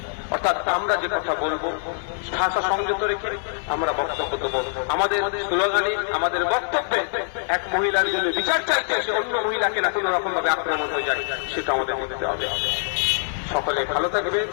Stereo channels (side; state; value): right; silent; digital silence